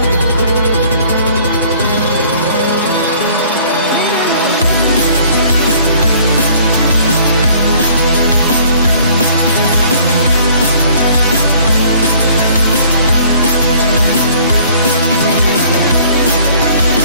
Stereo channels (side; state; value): both; inverted; correlation -0.55